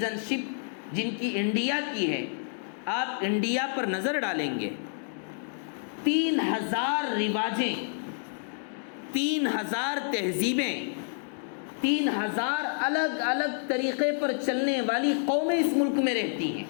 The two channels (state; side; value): silent; right; digital silence